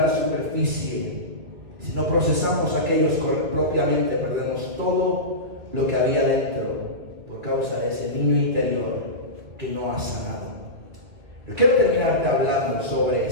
la superficie. Si no procesamos aquellos propiamente, perdemos todo lo que había dentro por causa de ese niño interior que no ha sanado. Pero quiero terminarte hablando sobre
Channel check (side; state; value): left; late; 2.2 ms